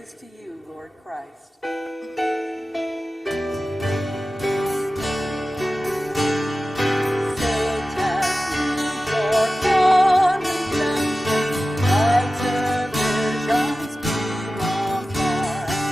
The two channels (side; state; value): both; normal; correlation 0.95